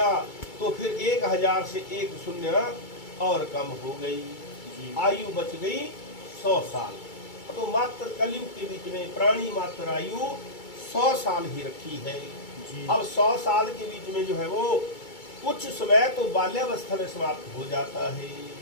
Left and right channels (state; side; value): late; right; 2.3 ms